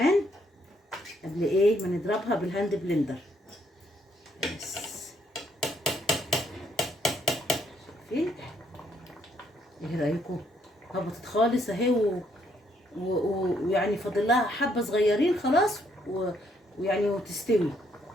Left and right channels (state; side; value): normal; both; correlation 0.71